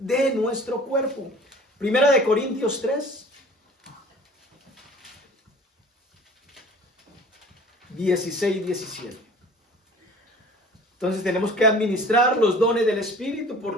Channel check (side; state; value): both; normal; correlation 0.46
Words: nuestro cuerpo. Primera de Corintios 3, 16 y 17. Entonces tenemos que administrar los dones del Espíritu